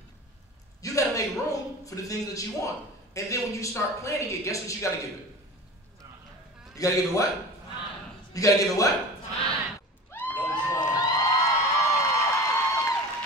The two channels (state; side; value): normal; both; correlation 0.36